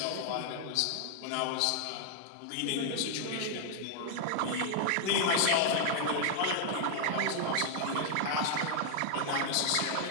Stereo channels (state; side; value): different; both; correlation 0.00